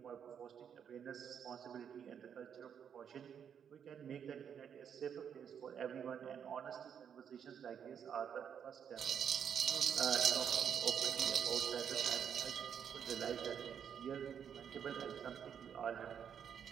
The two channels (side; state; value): left; quieter; 8.1 dB